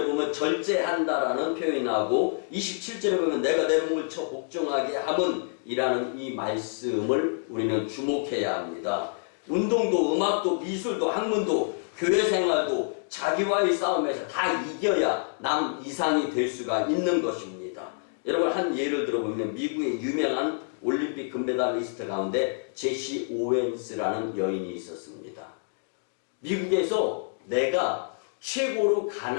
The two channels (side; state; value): right; silent; digital silence